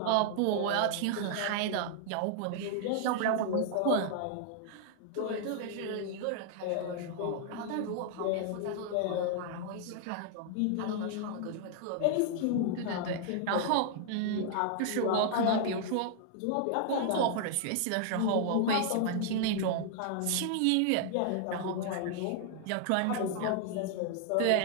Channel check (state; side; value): different; both; correlation -0.01